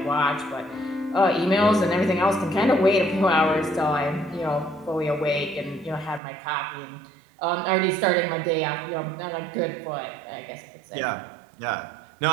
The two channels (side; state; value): left; drops out; at 6.2 s